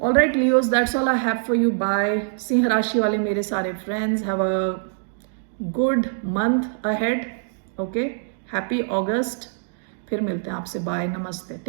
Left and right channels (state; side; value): silent; left; digital silence